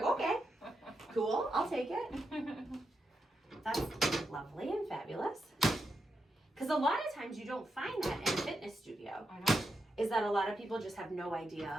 okay, cool, I'll take it. That's lovely and fabulous. Because a lot of times you don't find that in a fitness studio. I know. Is that a lot of people just have no idea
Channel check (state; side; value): normal; both; correlation 0.85